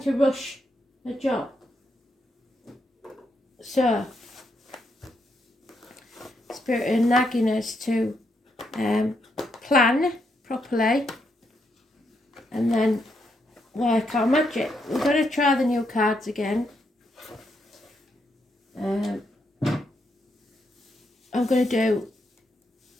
rush a job. So, Spirit are nagging us to plan properly and then work our magic. We're going to try the new cards again. I'm going to do,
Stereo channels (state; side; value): normal; both; correlation 0.79